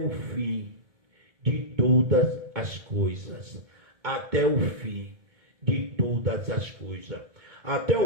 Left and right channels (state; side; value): late; left; 2.2 ms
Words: fim de todas as coisas. Até o fim de todas as coisas. Até